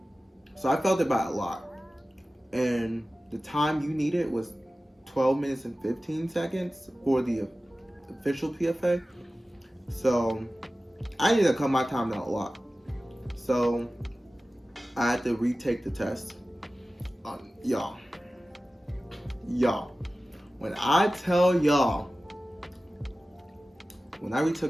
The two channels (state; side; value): normal; both; correlation 0.96